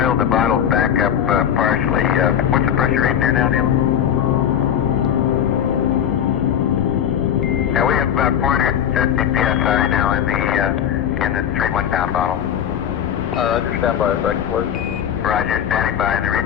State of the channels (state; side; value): quieter; right; 9.5 dB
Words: the bottles back up partially. What's the pressure reading there now, Neil? Now we have about 450 psi now in the 3 1-pound bottle. Roger, stand by a second, please. Roger, standing by. The